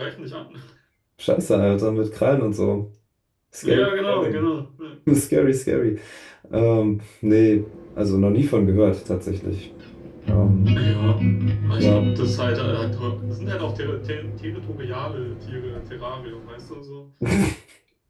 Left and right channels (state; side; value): identical; both; correlation 1.00